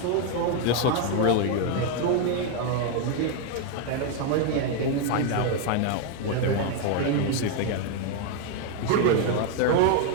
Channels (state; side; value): different; both; correlation 0.01